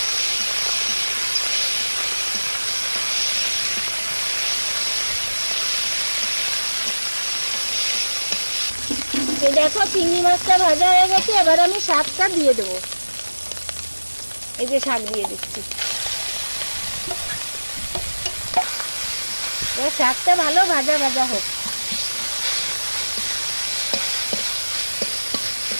এই দেখো চিংড়ি মাছটা ভাজা হয়ে গেছে, এবার আমি শাকটা দিয়ে দেবো। এই যে শাক দিয়ে দিচ্ছি। এবার শাকটা ভালো ভাজা ভাজা হোক।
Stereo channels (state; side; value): inverted; both; correlation -1.00